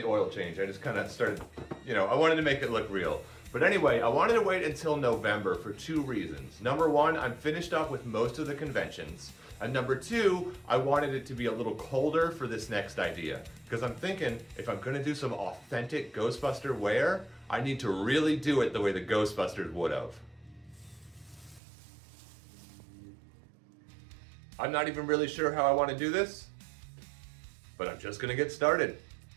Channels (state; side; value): drops out; left; at 21.6 s